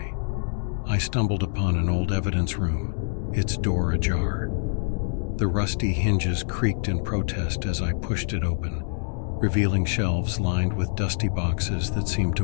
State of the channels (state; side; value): silent; right; digital silence